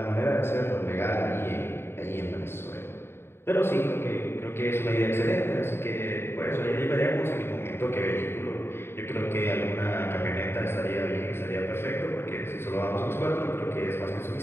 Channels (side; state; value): right; late; 0.11 ms